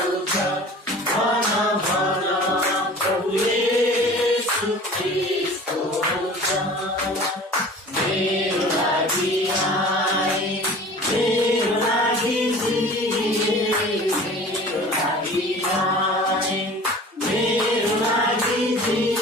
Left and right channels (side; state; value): both; normal; correlation 0.42